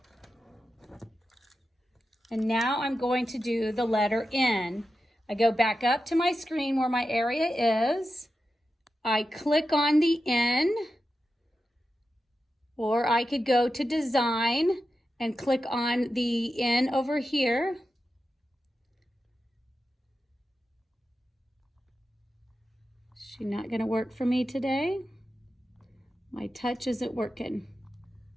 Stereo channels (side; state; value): both; normal; correlation 0.91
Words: And now I'm going to do the letter N. I go back up to my screen where my area is. I click on the N, or I could go to Design and click on the N over here. She's not going to work for me today. My touch isn't working.